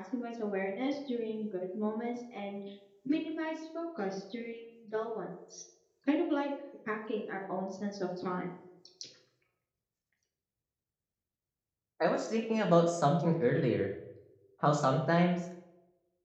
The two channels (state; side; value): identical; both; correlation 1.00